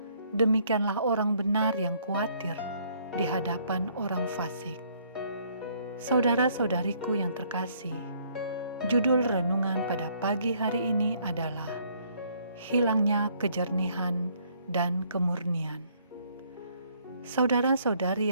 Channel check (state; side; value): inverted; both; correlation -0.65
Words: demikianlah orang benar yang khawatir di hadapan orang fasik. Saudara-saudariku yang terkasih, judul renungan pada pagi hari ini adalah Hilangnya Kejernihan dan Kemurnian. Saudara-saudari